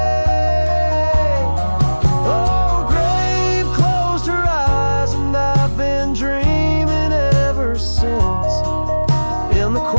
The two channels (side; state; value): both; inverted; correlation -1.00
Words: Oh, grave closed her eyes, and I've been dreaming ever since, in the